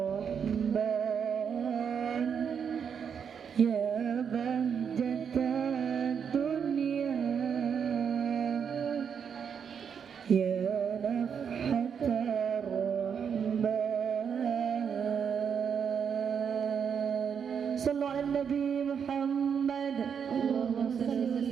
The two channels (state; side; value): quieter; left; 7.2 dB